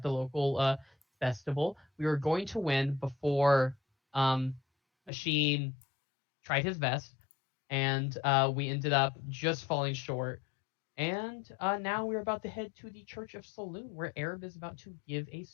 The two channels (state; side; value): drops out; right; at 5.1 s